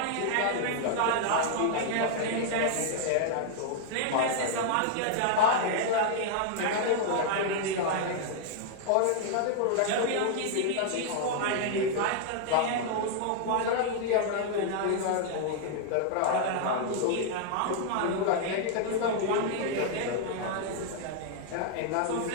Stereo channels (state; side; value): different; both; correlation -0.01